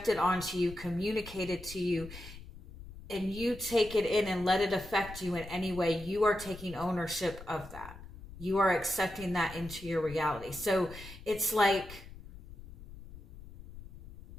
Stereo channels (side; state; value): left; noise; rumble, 15 dB below the sound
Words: onto you, communicated to you, and you take it in and let it affect you in any way, you are taking ownership of that. You are accepting that into your reality. So it's like,